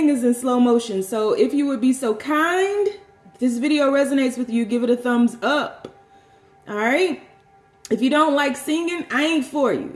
is in slow motion. So if you would be so kind, if this video resonates with you, give it a thumbs up. All right. If you don't like singing, I ain't for you.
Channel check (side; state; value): both; identical; correlation 1.00